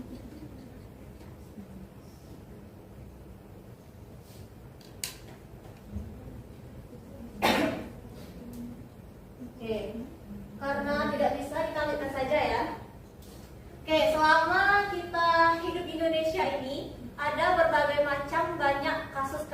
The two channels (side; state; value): both; identical; correlation 1.00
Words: karena tidak bisa ditalikkan saja ya. Oke, selama kita hidup di Indonesia ini ada berbagai macam banyak